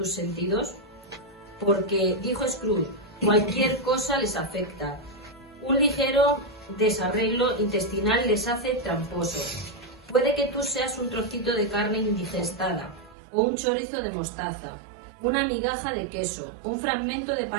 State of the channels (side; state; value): left; drops out; at 13.2 s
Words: sentidos? Porque, dijo Scrooge, cualquier cosa les afecta. Un ligero desarreglo intestinal les hace tramposos. Puede que tú seas un trocito de carne indigestada, o un chorizo de mostaza, una migaja de queso, un fragmento de